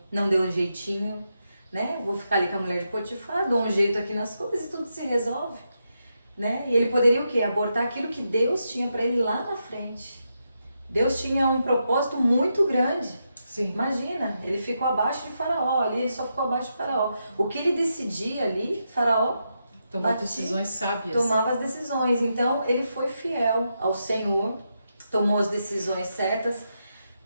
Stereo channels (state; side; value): inverted; both; correlation -0.84